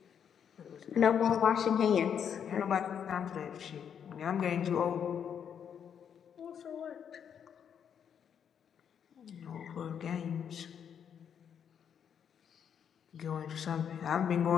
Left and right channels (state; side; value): quieter; right; 8.1 dB